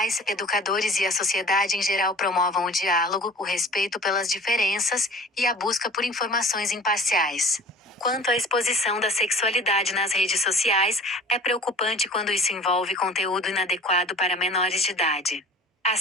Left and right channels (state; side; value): normal; both; correlation 0.44